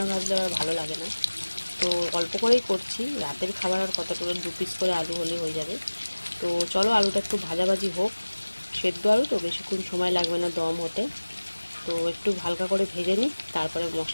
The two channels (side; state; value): both; inverted; correlation -1.00